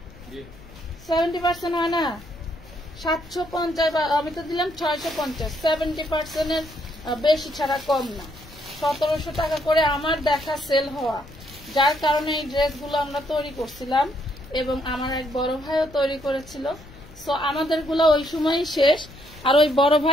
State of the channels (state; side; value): noise; left; rumble, 20 dB below the sound